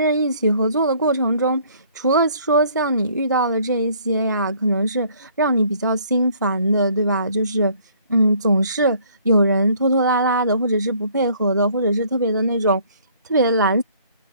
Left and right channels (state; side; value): inverted; both; correlation -0.60